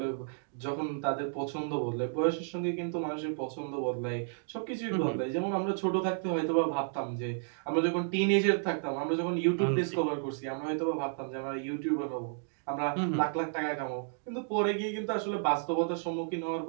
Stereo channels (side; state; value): left; silent; digital silence